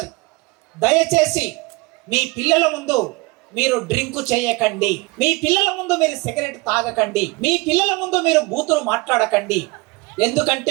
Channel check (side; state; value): left; quieter; 25.3 dB